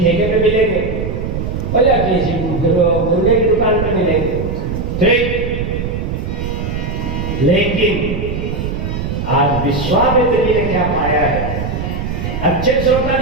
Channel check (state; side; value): noise; right; rumble, 4 dB below the sound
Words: पे मिलेंगे, और या किसी मुर्गे की दुकान पे मिलेंगे। ठीक, लेकिन आज विश्वामित्र जी ने क्या पाया है? अच्छे श्रोता